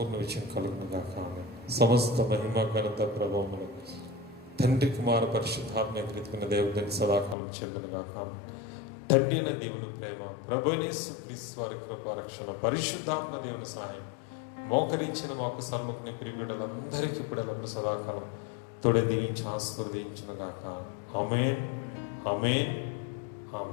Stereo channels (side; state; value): right; drops out; at 7.4 s